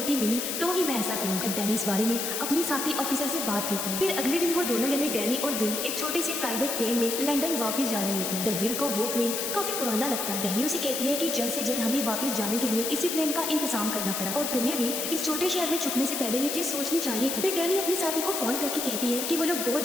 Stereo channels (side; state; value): left; noise; hiss, 2 dB below the sound